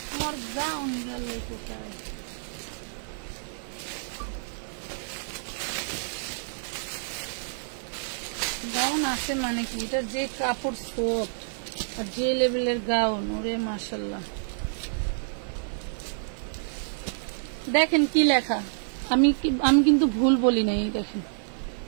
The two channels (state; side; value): silent; left; digital silence